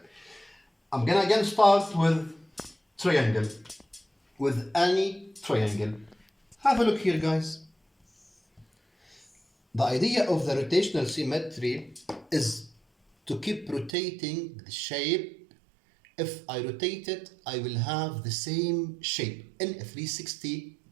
I'm gonna again start with triangle. With any triangle. Have a look here, guys. The idea of the rotational symmetry is to keep rotating the shape. If I rotate it, I will have the same shape in 360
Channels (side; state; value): left; drops out; at 13.9 s